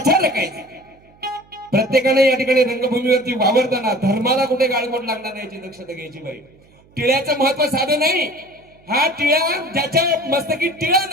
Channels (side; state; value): right; noise; hum, 30 dB below the sound